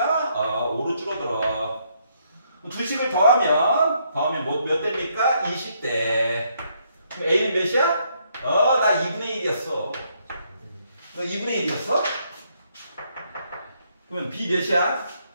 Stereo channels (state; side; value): inverted; both; correlation -0.73